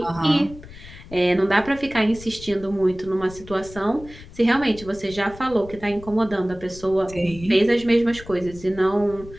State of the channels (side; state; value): left; noise; rumble, 17 dB below the sound